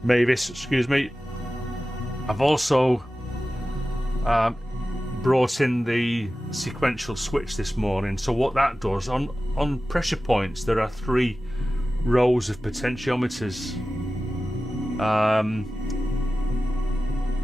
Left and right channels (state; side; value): normal; both; correlation 0.95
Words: Mavis, excuse me. I've also brought in the sequential switch this morning. So what that does, on pressure points, there are 3 rows of potentiometers.